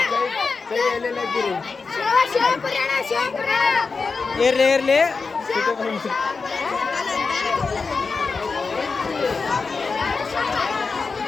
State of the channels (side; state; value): right; quieter; 4.6 dB